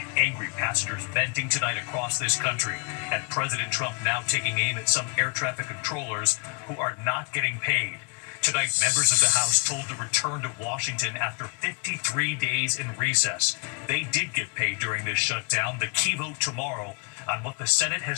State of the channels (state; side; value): quieter; right; 34.3 dB